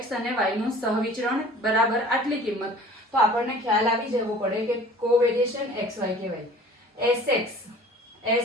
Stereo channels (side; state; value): both; normal; correlation 0.47